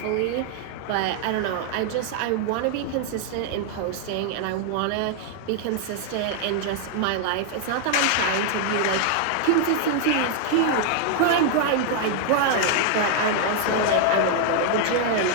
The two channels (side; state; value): both; different; correlation 0.00